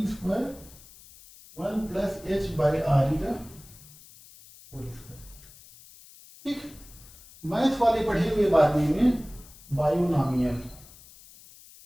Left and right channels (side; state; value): left; noise; hiss, 22 dB below the sound